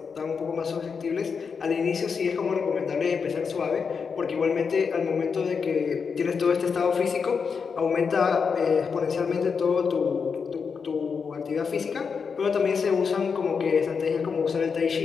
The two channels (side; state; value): right; quieter; 5.8 dB